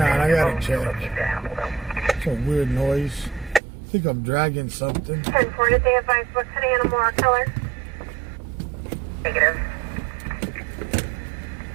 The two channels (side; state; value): left; drops out; at 3.6 s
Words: I gotta check. It's a weird noise. think I'm dragging something. 10-4, did they advise what kind of animal or color? Negative.